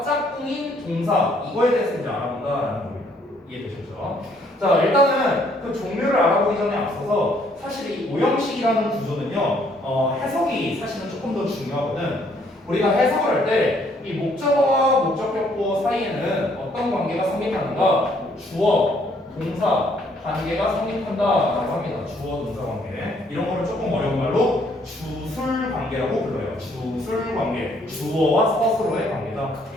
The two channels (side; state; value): both; normal; correlation 0.66